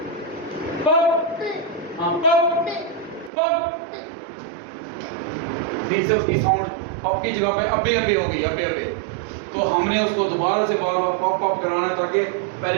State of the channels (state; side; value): drops out; left; at 3.3 s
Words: पप, हाँ पप पप। फिर से उसकी साउंड पप की जगह पे अबे अबे हो गई, अबे अबे। तो हमने उसको दोबारा से बार बार पप पप कराना है, ताकि